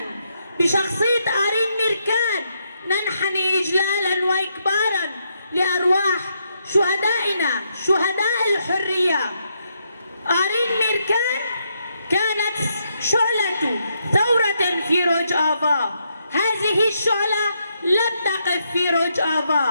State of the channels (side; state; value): both; inverted; correlation -0.78